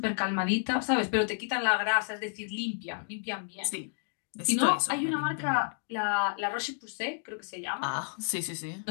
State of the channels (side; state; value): right; silent; digital silence